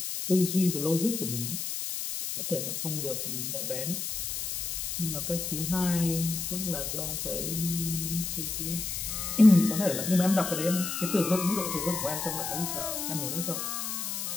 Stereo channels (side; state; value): left; noise; hiss, 3 dB below the sound